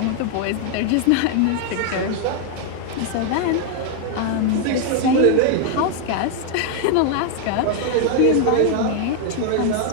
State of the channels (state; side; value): different; both; correlation 0.00